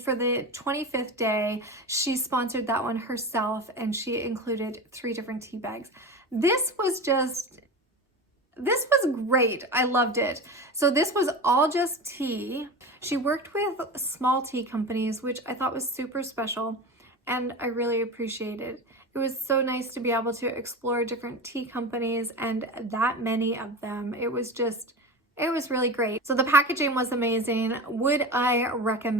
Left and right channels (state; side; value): normal; both; correlation 0.27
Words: the 25th day, she sponsored that one herself, and she included 3 different tea bags. This was great. I loved it. So this was all just tea. She worked with small tea companies, which I thought was super special, and I really appreciated. It was so nice to be able to explore different tea companies, and that many of them. It was really great. So the packaging was amazing. Would I